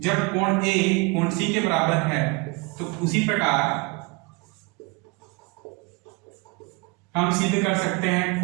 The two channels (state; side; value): quieter; left; 27.2 dB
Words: कोण A कोण C के बराबर है, तो उसी प्रकार हम सिद्ध कर सकते हैं